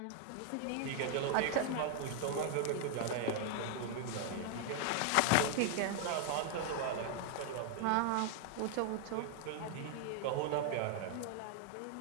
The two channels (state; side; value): different; both; correlation 0.00